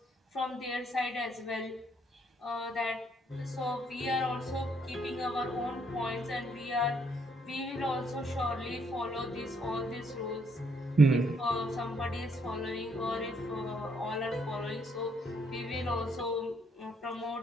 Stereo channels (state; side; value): normal; both; correlation 0.70